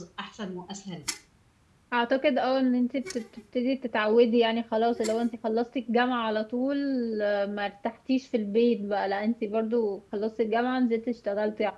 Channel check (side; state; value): both; identical; correlation 1.00